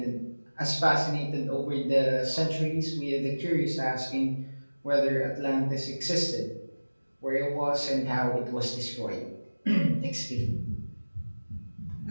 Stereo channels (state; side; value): inverted; both; correlation -1.00